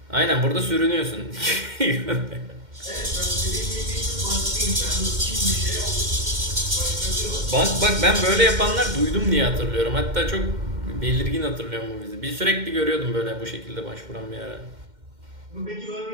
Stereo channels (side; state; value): left; late; 2.1 ms